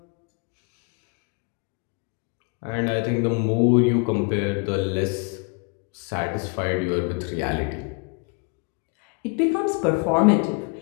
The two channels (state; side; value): quieter; right; 34.0 dB